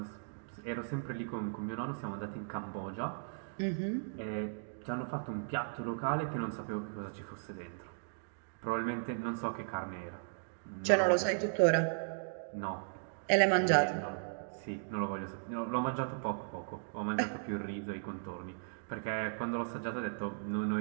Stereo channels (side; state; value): left; silent; digital silence